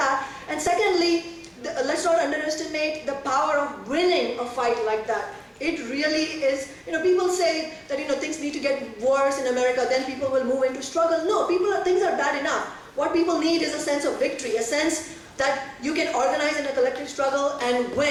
And secondly, let's not underestimate the power of winning a fight like that. It really is, you know, people say that, you know, things need to get worse in America, then people will move into struggle. No, things are bad enough. What people need is a sense of victory, a sense that you can organize in a collective struggle and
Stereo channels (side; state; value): both; identical; correlation 1.00